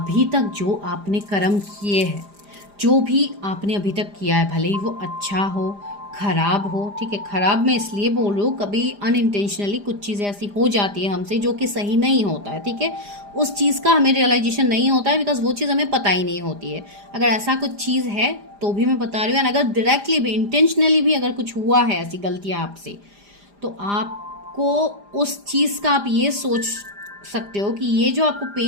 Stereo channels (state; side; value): late; left; 4.9 ms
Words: तक जो आपने कर्म किए हैं, जो भी आपने अभी तक किया है, भले ही वो अच्छा हो खराब हो, ठीक है। खराब मैं इसलिए बोल रही हूँ, कभी अनइंटेंशनली कुछ चीज़ें ऐसी हो जाती है हमसे जो कि सही नहीं होता है, ठीक है। उस चीज़ का हमें रियलाइजेशन नहीं होता है बिकॉज वो चीज़ हमें पता ही नहीं होती है। अगर ऐसा कुछ चीज़ है तो भी मैं बता रही हूँ। अगर डायरेक्टली भी इंटेंशनली भी अगर कुछ हुआ है ऐसी गलतियाँ आपसे, तो आपको उस चीज़ का आप ये सोच सकते हो कि ये जो आपको